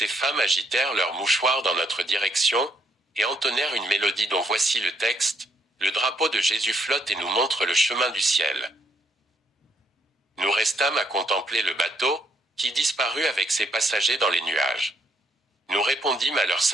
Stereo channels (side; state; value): both; normal; correlation 0.71